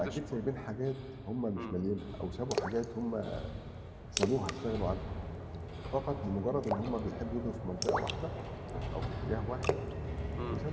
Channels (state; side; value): identical; both; correlation 1.00